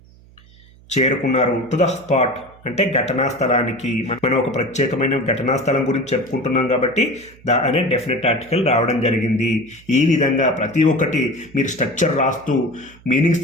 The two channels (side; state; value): right; noise; hum, 25 dB below the sound